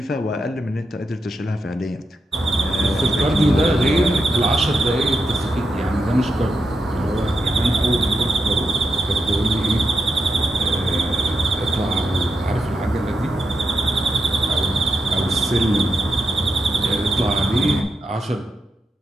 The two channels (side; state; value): both; normal; correlation 0.86